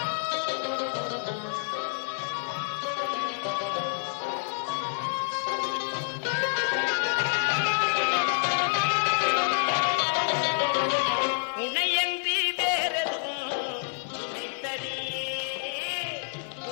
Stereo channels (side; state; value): right; silent; digital silence